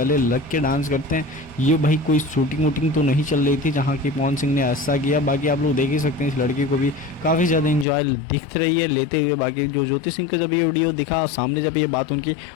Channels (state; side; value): drops out; right; at 7.9 s